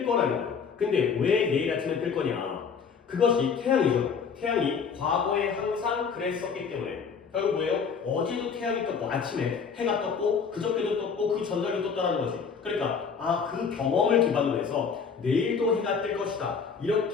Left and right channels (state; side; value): quieter; right; 6.0 dB